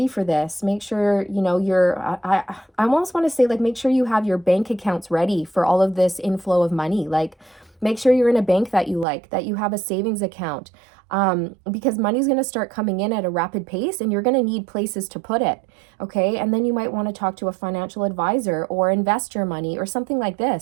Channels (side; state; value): left; drops out; at 9.1 s